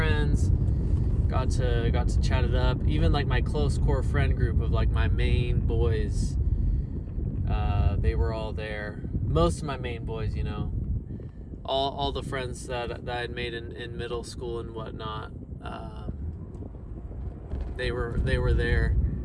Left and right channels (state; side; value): identical; both; correlation 1.00